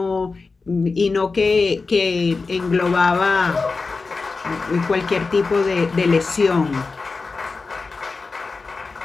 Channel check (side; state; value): right; quieter; 4.1 dB